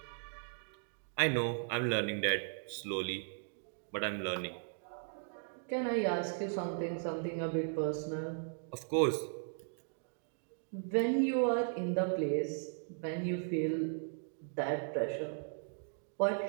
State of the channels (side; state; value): left; silent; digital silence